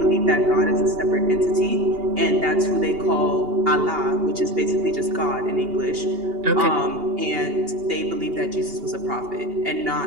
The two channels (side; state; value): left; late; 2.8 ms